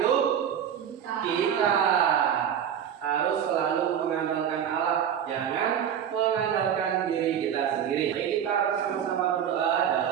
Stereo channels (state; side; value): quieter; left; 9.0 dB